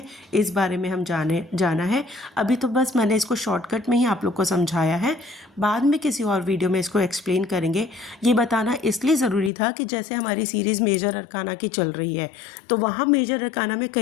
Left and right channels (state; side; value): drops out; right; at 9.5 s